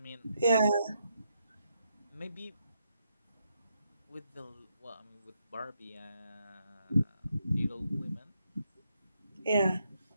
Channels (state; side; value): inverted; both; correlation -0.79